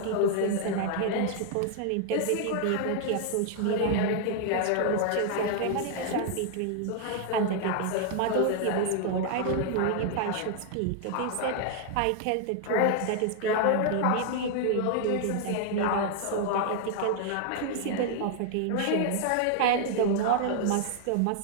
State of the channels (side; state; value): both; different; correlation 0.00